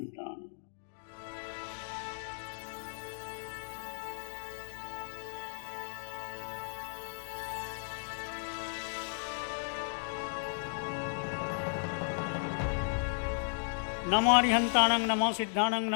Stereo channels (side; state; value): right; silent; digital silence